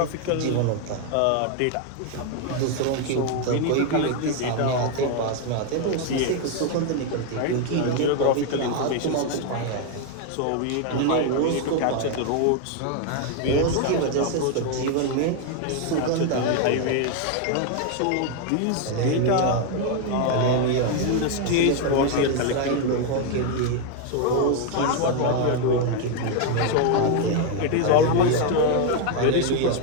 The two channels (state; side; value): different; both; correlation 0.01